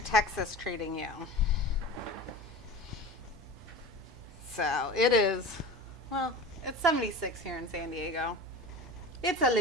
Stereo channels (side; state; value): both; normal; correlation 0.34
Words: Texas treating you? So it is, well, it's 76 here in San Diego. It's a